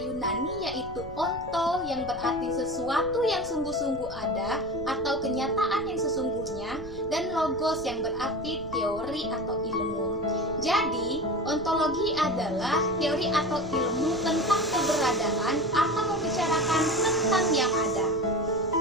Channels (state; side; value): noise; right; rumble, 15 dB below the sound